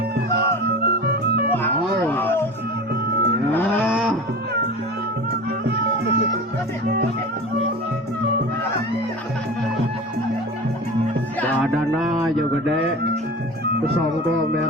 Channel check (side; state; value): both; normal; correlation 0.33